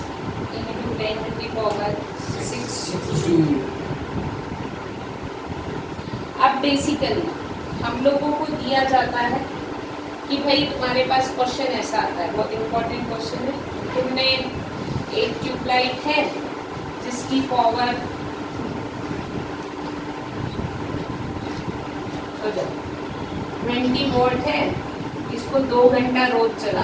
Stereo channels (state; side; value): identical; both; correlation 1.00